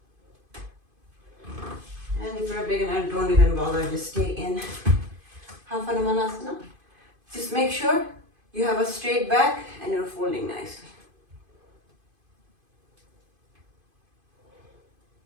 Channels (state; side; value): late; left; 2.5 ms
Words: And if you're a beginner, don't even bother, just stay in half Hanumanasana. Just make sure you have a straight back and you're folding nicely.